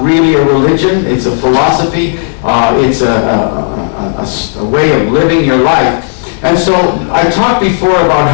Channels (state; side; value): silent; right; digital silence